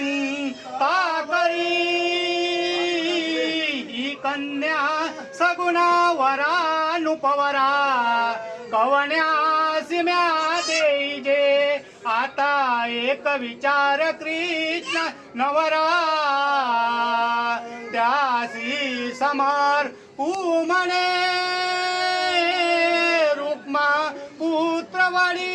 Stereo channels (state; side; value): identical; both; correlation 1.00